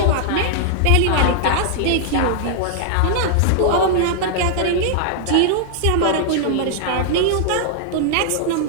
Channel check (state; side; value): different; both; correlation -0.01